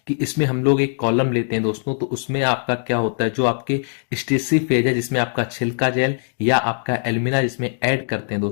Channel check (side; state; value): right; silent; digital silence